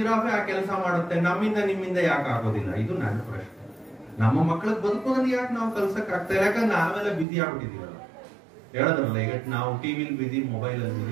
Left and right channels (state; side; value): drops out; left; at 7.2 s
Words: ಆ ಕೆಲಸ ಮಾಡುತ್ತೆ, ನಿಮ್ಮಿಂದ ಯಾಕೆ ಆಗೋದಿಲ್ಲ? ಇದು ನನ್ನ ಪ್ರಶ್ನೆ. ನಮ್ಮ ಮಕ್ಕಳಿಗೆ ಬದುಕೋದನ್ನ ಯಾಕೆ ನಾವು ಕಲ್ಸಕ್ ಆಗ್ತಾ ಇಲ್ಲ? ಯಾಕಂದ್ರೆ ನಾವೆಲ್ಲ ಬಿಸಿ ಆಗ್ಬಿಟ್ಟಿದೀವಲ್ಲ. ಹೇಳದ್ರಲ್ಲ, ಈಗ ನಾವು ಟಿವಿಲಿ ಬಿಸಿ, ಮೊಬೈಲ್ ಅಲ್ಲಿ